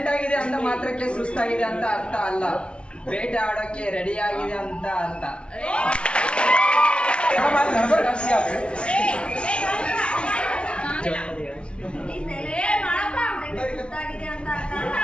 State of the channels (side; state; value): right; late; 0.058 ms